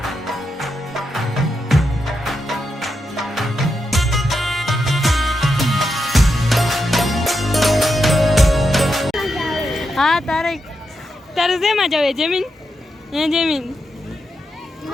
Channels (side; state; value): both; normal; correlation 0.85